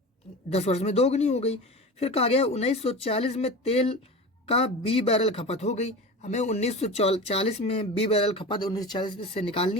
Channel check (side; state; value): both; normal; correlation 0.31